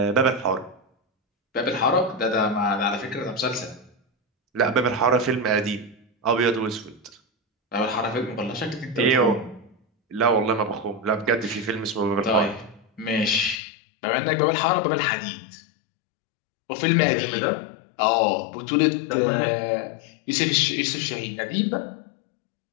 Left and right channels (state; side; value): drops out; right; at 13.6 s